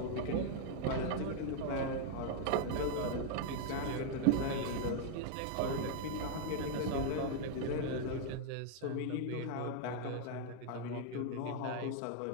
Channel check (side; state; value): both; different; correlation 0.00